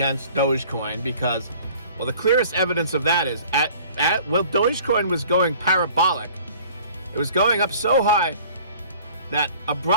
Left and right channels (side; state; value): both; inverted; correlation -0.50